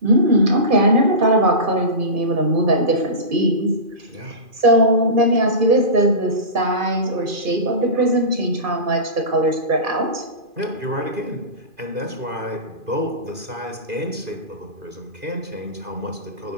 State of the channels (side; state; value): left; late; 2.4 ms